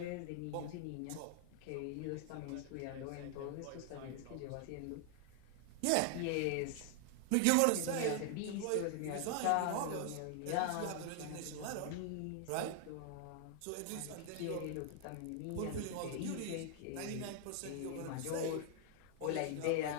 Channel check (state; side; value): different; both; correlation 0.00